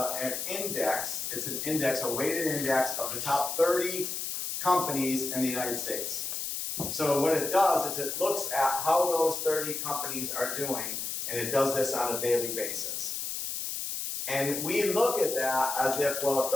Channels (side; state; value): left; noise; hiss, 4 dB below the sound